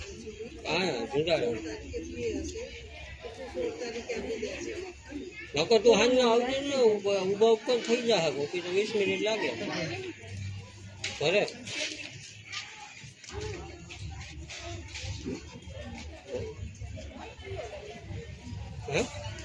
હા જુગાડો નકર તું હાલ ના આવજે ને, ઉભા ઉપર થઈ જાય કોકી તો 20 મિનિટ લાગે ઘરે. હે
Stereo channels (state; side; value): identical; both; correlation 1.00